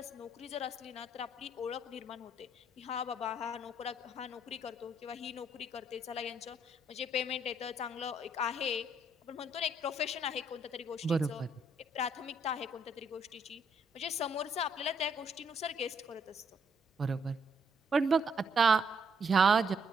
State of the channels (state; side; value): normal; both; correlation 0.70